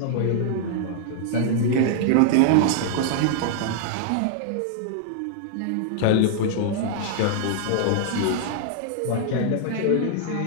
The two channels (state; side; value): different; both; correlation -0.01